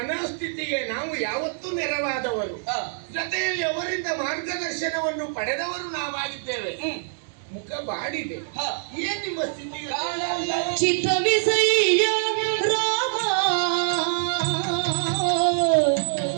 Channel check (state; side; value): silent; left; digital silence